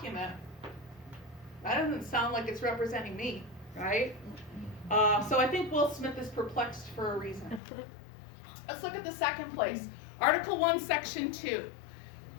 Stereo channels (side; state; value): right; drops out; at 7.6 s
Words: that doesn't sound like it's representing me, right? So I think Will Smith is perplexed for a reason. Let's look at the second place. Article 1, Section 2.